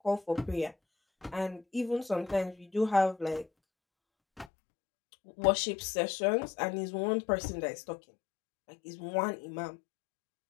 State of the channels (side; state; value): right; drops out; at 4.5 s